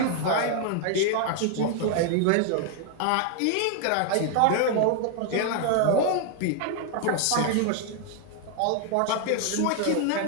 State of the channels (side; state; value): both; different; correlation 0.00